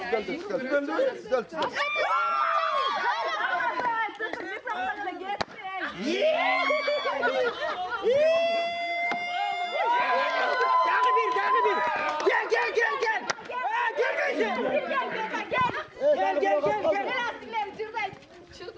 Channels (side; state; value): both; identical; correlation 1.00